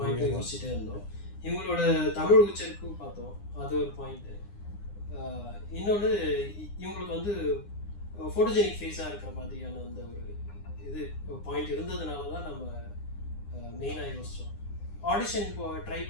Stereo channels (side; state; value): right; late; 9.8 ms